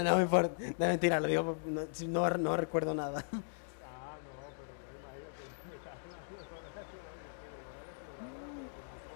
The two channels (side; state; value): right; silent; digital silence